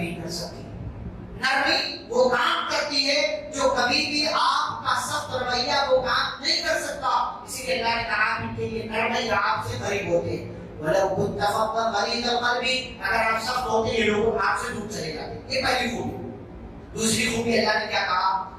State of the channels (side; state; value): both; identical; correlation 1.00